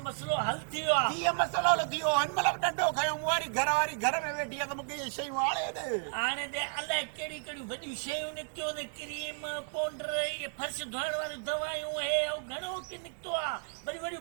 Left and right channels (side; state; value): left; silent; 56 dB below the other